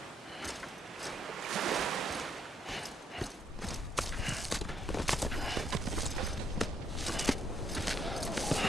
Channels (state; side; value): normal; both; correlation 0.73